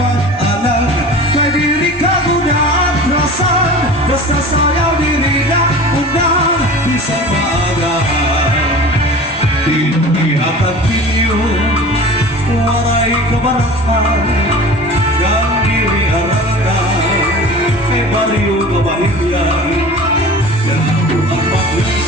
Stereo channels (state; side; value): normal; both; correlation 0.39